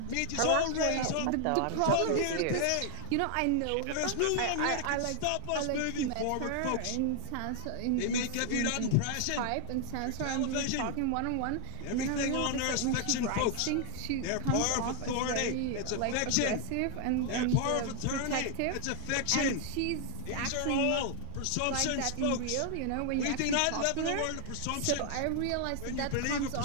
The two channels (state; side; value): different; both; correlation 0.00